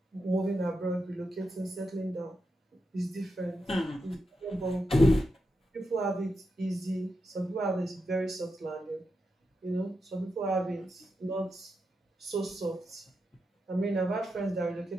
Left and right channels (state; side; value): normal; both; correlation 0.86